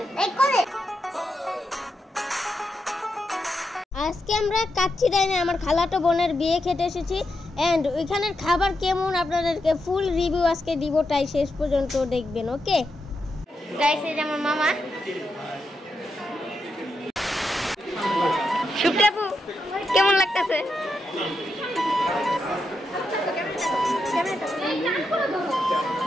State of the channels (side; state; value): both; normal; correlation 0.85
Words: আজকে আমরা কাচ্চিডাইনে আমার খালাতো বোনের বিয়ে খেতে এসেছি এন্ড ওইখানের খাবার কেমন আপনাদেরকে ফুল রিভিউ আজকে দিব, তাই শেষ পর্যন্ত দেখবেন। ওকে গাইস, এই যে আমার মামা শুক্রাপু, কেমন লাগতেছে?